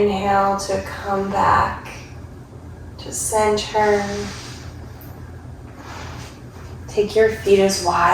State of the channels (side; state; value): both; identical; correlation 1.00